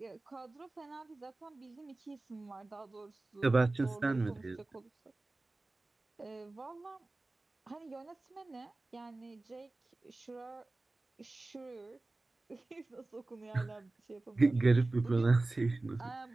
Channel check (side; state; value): left; quieter; 3.1 dB